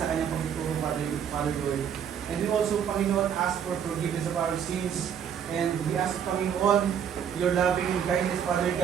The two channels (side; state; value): left; quieter; 8.4 dB